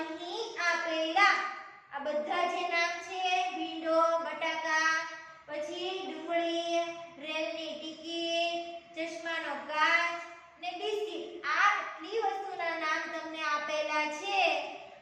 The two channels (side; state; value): both; identical; correlation 1.00